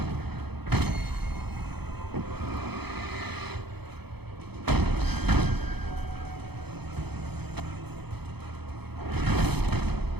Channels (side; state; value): left; late; 0.98 ms